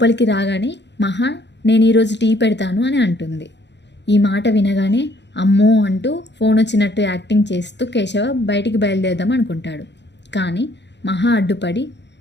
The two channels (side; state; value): right; late; 0.51 ms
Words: రాగానే మహా నేను ఈరోజు టీ పెడతాను అని అంటుంది. ఈ మాట వినగానే అమ్మో అంటూ ఫోన్ వచ్చినట్టు యాక్టింగ్ చేస్తూ కేశవ బయటికి బయలుదేరదాం అనుకుంటాడు. కానీ మహా అడ్డుపడి